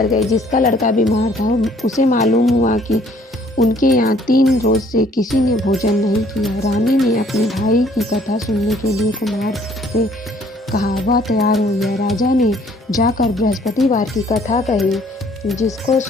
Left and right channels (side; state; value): both; normal; correlation 0.60